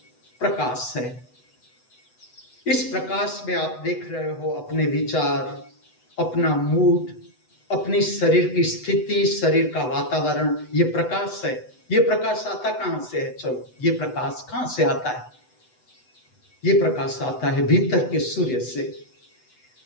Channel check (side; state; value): right; late; 8.0 ms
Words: प्रकाश है। इस प्रकाश में आप देख रहे हो अपने विचार, अपना मूड, अपनी शरीर की स्थिति, शरीर का वातावरण। ये प्रकाश है। ये प्रकाश आता कहां से है? चलो, ये प्रकाश कहां से आता है? ये प्रकाश आता है भीतर के सूर्य से।